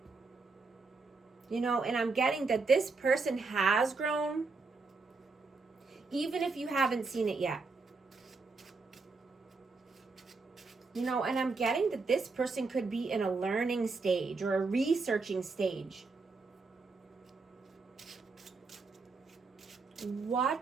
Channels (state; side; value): quieter; left; 4.1 dB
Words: You know, and I'm getting that this person has grown, even if you haven't seen it yet. You know, and I'm getting that this person could be in a learning stage or a researching stage.